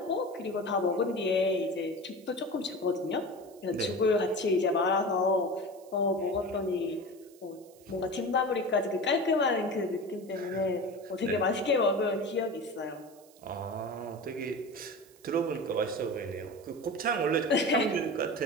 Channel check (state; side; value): noise; right; hiss, 26 dB below the sound